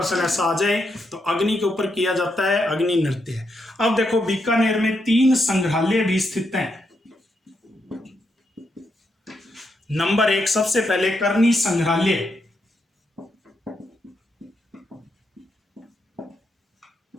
ऐसा आ जाए तो अग्नि के ऊपर किया जाता है, अग्नि नृत्य। अब देखो, बीकानेर में 3 संग्रहालय भी स्थित हैं। नंबर 1, सबसे पहले करनी संग्रहालय।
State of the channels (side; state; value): both; normal; correlation 0.81